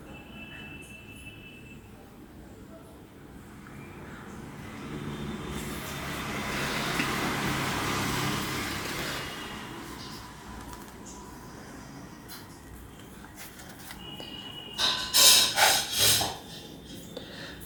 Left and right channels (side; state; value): both; identical; correlation 1.00